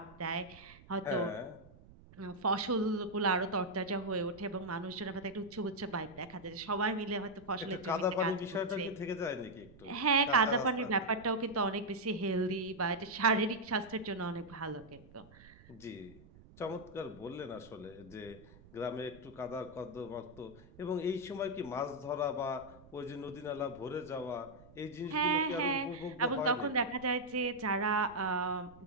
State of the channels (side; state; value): right; noise; rumble, 22 dB below the sound